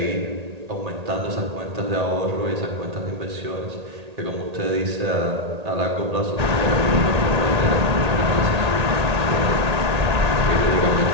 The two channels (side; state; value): left; late; 1.8 ms